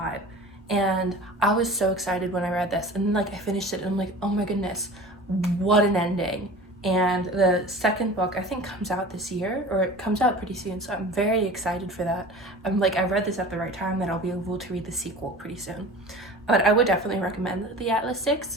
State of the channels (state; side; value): normal; both; correlation 0.39